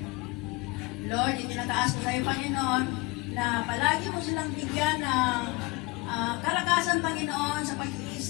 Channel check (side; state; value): right; quieter; 24.7 dB